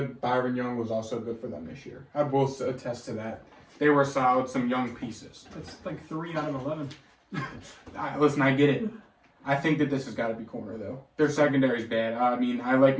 Byron Young was also good for them this year. I will attest to that. They were solid, some young pieces. That's like 3 out of 11. Listen, I get it. I think that this has got to be corner, though. Their secondary's bad. I mean, I like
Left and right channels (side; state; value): both; identical; correlation 1.00